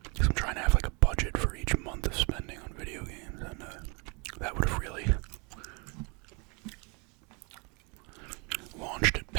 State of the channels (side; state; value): left; quieter; 31.4 dB